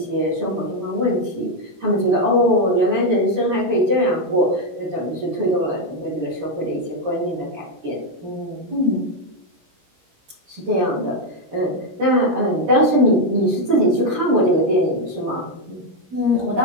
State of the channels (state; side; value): late; left; 17 ms